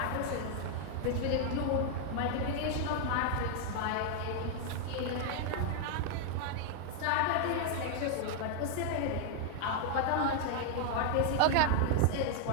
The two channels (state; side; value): different; both; correlation 0.00